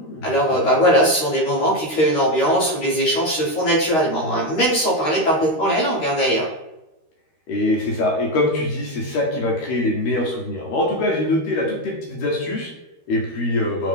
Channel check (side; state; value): right; late; 13 ms